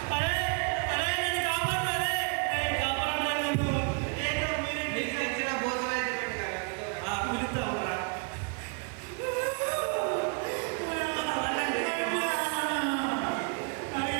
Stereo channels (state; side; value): quieter; left; 35.8 dB